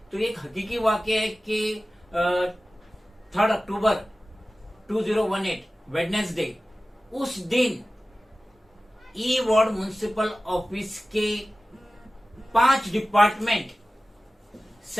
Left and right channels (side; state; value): both; normal; correlation 0.96